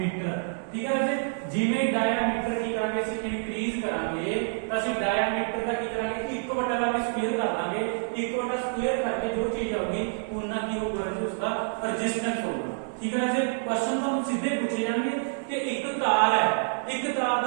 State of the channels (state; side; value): silent; left; digital silence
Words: ਠੀਕ ਹੈ ਰਾਜੇ ਜਿਵੇਂ ਡਾਇਆਮੀਟਰ ਕੀ ਕਰਾਂਗੇ ਅਸੀਂ ਇਨਕਰੀਜ਼ ਕਰਾਂਗੇ ਤਾਂ ਅਸੀਂ ਡਾਇਆਮੀਟਰ ਦਾ ਕੀ ਕਰਾਂਗੇ 1 ਵਟਾ ਦਾ ਸਕੁਅਰ ਕਰ ਦਾਂਗੇ 1 ਵਟਾ ਸਕੁਅਰ ਕਰਕੇ ਜੋ ਚੀਜ਼ ਆਊਗੀ ਉਹਨਾਂ ਕੀ ਹੋਊਗਾ ਰਾਜੇ ਉਸਦਾ ਰੈਜ਼ਿਸਟੈਂਸ ਹੋਊਗਾ ਠੀਕ ਹੈ ਰਾਜੇ ਕੁਐਸਚਨ ਤੁਹਾਨੂੰ ਸਿੱਧੇ ਪੁੱਛੇ ਜਾਣਗੇ ਕਿ ਇੱਕ ਤਾਰ ਹੈ ਇੱਕ ਤਾਰ